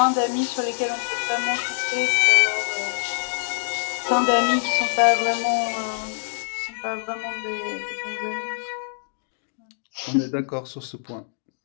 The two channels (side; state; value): right; silent; digital silence